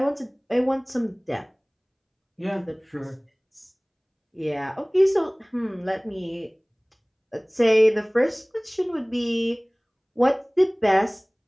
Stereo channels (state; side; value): identical; both; correlation 1.00